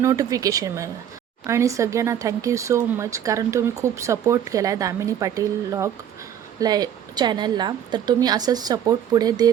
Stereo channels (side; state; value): left; quieter; 9.6 dB